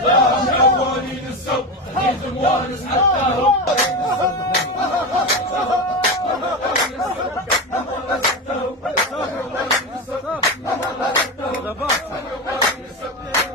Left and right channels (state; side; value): normal; both; correlation 0.19